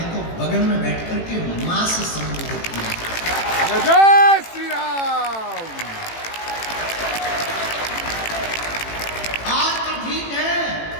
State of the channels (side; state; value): right; late; 18 ms